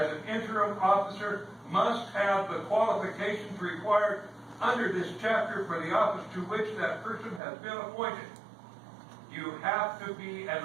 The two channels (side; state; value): left; drops out; at 7.4 s